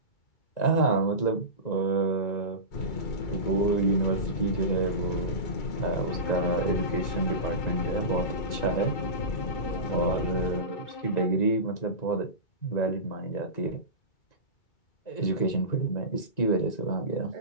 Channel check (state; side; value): late; right; 2.0 ms